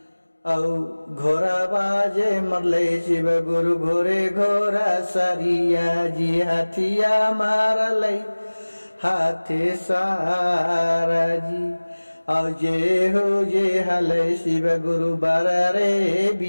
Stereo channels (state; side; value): inverted; both; correlation -1.00